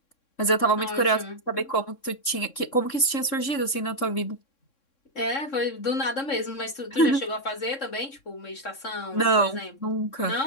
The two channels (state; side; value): late; right; 3.6 ms